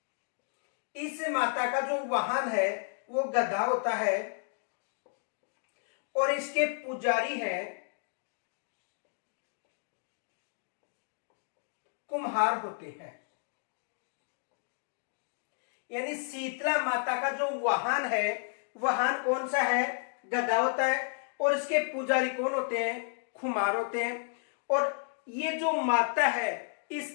इस माता का जो वाहन है वो गधा होता है और इसके पुजारी है कुम्हार होते हैं। यानी शीतला माता का जो वाहन है, वाहन कौन सा है? गधा होता है और इसके पुजारी कौन होते हैं? कुम्हार होते हैं। और ये जो माता है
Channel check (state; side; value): silent; right; 56 dB below the other